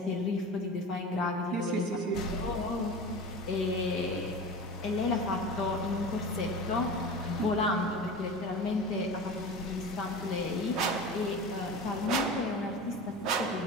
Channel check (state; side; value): normal; both; correlation 0.31